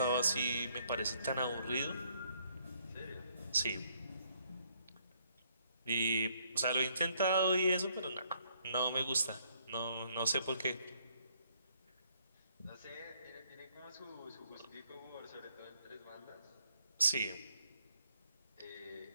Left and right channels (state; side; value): inverted; both; correlation -0.69